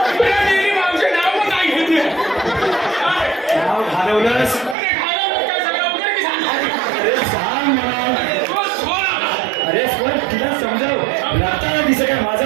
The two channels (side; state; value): left; drops out; at 4.8 s